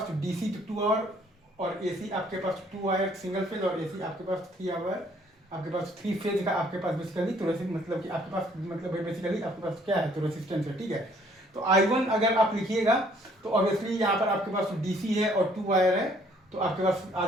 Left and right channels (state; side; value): normal; both; correlation 0.62